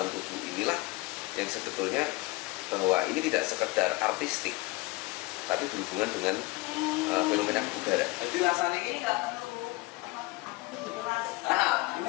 tubuh inilah yang sebetulnya bahwa ini tidak sekedar artistik, tapi berhubungan dengan fenomena kebugaran. Jadi rasanya ini ini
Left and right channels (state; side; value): quieter; right; 22.5 dB